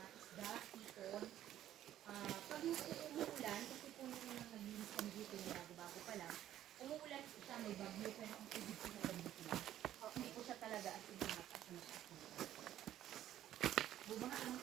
isda, ipon. Pag umuulan, kasi po nung naglinis kami dito yung bago-bago pa lang, umuulan siya, may bagyo, pero ang tubig po na dito lang. Hindi po siya talaga at hindi mataas na mataas. Bumangaan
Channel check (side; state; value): left; quieter; 12.2 dB